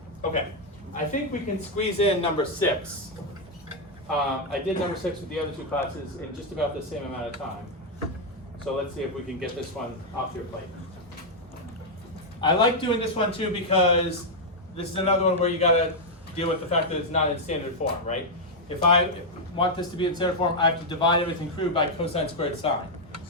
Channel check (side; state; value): both; normal; correlation -0.02